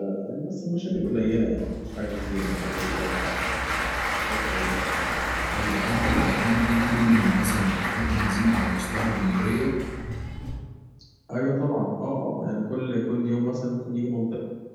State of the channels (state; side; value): identical; both; correlation 1.00